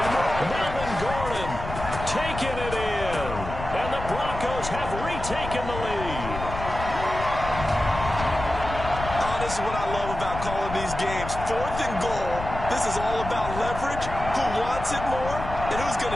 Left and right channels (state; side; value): noise; left; rumble, 8 dB below the sound